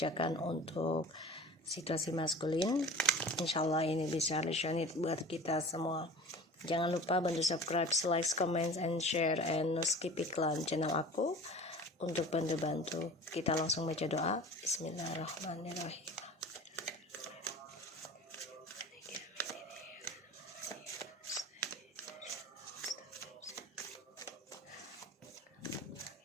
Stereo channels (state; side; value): normal; both; correlation 0.39